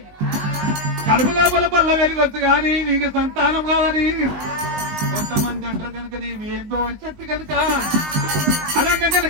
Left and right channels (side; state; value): left; late; 20 ms